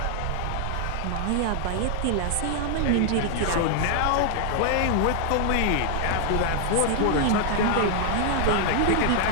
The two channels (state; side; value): different; both; correlation 0.00